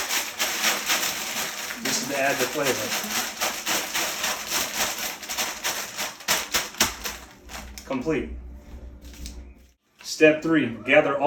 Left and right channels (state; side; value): identical; both; correlation 1.00